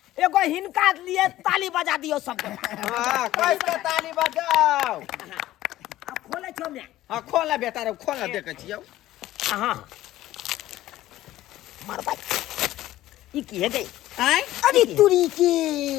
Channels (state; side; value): quieter; right; 15.0 dB